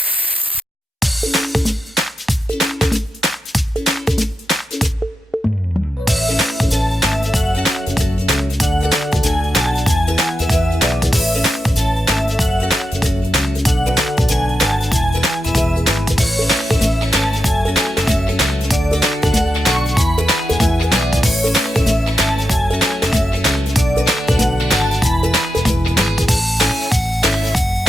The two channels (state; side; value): normal; both; correlation 0.88